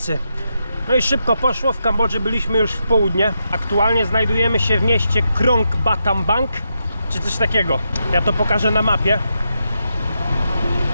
No i szybko poszło, w Kambodży byliśmy już w południe. Aktualnie znajdujemy się w mieście Krong Battambang, czy coś takiego. Ja to pokażę na mapie.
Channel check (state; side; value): inverted; both; correlation -0.84